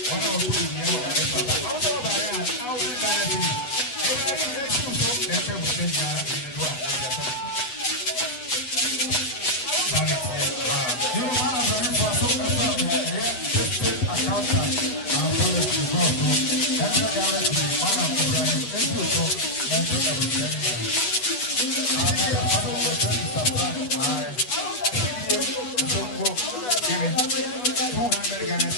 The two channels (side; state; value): right; late; 8.1 ms